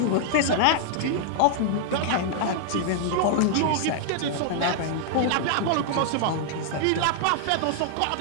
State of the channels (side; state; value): both; different; correlation -0.01